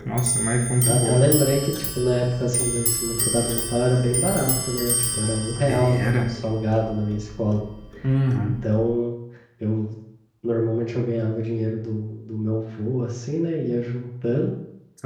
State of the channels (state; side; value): identical; both; correlation 1.00